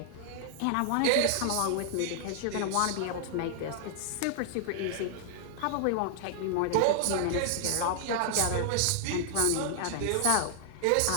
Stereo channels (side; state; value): both; different; correlation -0.01